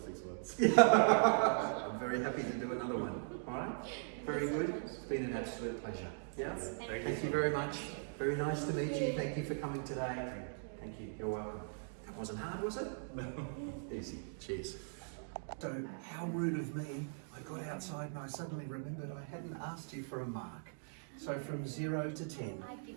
6 months. I'm very happy to do another one. All right. Very good. It's been an absolute pleasure. Yeah. Thank you very much. Very nice to meet you. Thank you for coming today. Thank you. You're welcome. That wasn't hard, was it? No. Easy. Cheers. So, how rude of me. I got outside and I suddenly remembered I hadn't asked you for a mark. So from 0 to 10. I'd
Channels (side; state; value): left; silent; digital silence